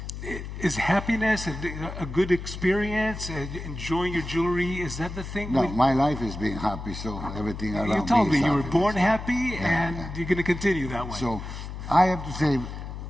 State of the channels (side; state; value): left; noise; hum, 8 dB below the sound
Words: Is happiness and a good experience, enjoying your jewelry, is that the thing? No, my life is being happy, so everything around me You told me you were happiness. born happy, and you're going to continue that way. So I have to say